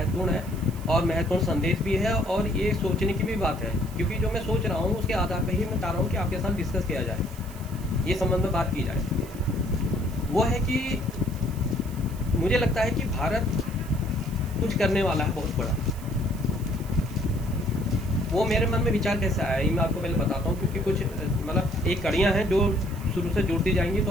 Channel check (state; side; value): noise; right; hiss, 20 dB below the sound